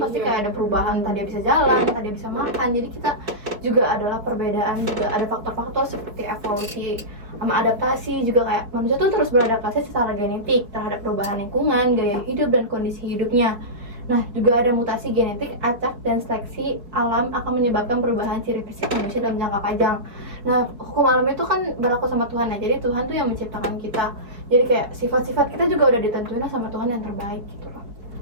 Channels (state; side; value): late; left; 4.7 ms